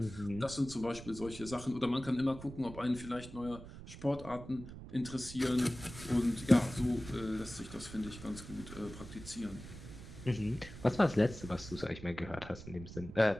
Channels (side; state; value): right; noise; rumble, 13 dB below the sound